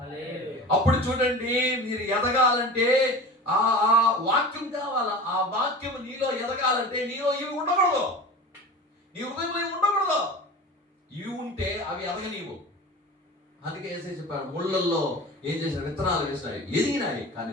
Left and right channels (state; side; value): normal; both; correlation 0.35